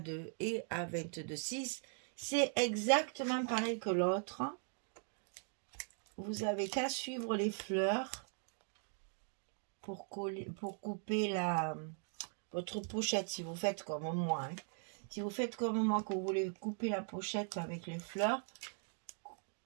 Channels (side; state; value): left; silent; 51 dB below the other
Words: et à 22,6. C'est exactement pareil que l'autre. Vous avez qu'à suivre les fleurs pour couper votre pochette, si vous faites comme moi. Hein. Si vous faites comme moi, que vous voulez couper la pochette avec les fleurs,